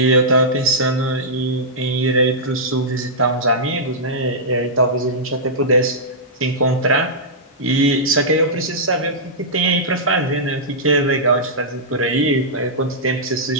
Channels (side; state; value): both; normal; correlation -0.12